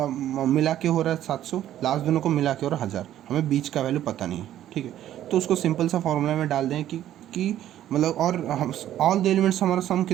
मिला के हो रहा है 700, लास्ट दोनों को मिला के हो रहा है 1000, हमें बीच का वैल्यू पता नहीं है, ठीक है। तो उसको सिंपल सा फॉर्मूला में डाल दें कि मतलब, और हम ऑल द एलिमेंट्स हमारा सम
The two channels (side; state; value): left; quieter; 12.1 dB